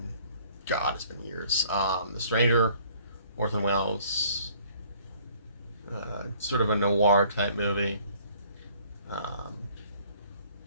God, it's been years. The Stranger, Orson Welles. Sort of a noir type movie. And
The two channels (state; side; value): inverted; both; correlation -0.57